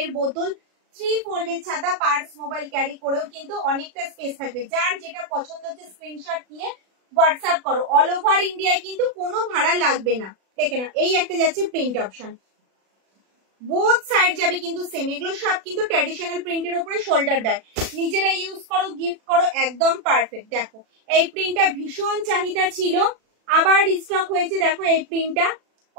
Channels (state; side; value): late; left; 36 ms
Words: বোতল, 3 ফোল্ডের ছাতা, পার্স, মোবাইল ক্যারি করেও কিন্তু অনেকটা স্পেস থাকবে। যার যেটা পছন্দ হচ্ছে স্ক্রিনশট নিয়ে হোয়াটসঅ্যাপ করো। অল ওভার ইন্ডিয়ায় কিন্তু কোনো ভাড়া লাগবে না। দেখে না এই একটা যাচ্ছে প্রিন্ট অপশন, বোথ সাইড যাবে কিন্তু সেম। এগুলো সব কিন্তু ট্র্যাডিশনাল প্রিন্টের উপরে শোল্ডার ব্যাগ, নিজেরা ইউজ করো, গিফট করো, একদম পারফেক্ট। দেখো এই প্রিন্টটা ভীষণ চাহিদা ছিল, আবার রিস্টক হয়েছে। দেখো এই প্রিন্টটা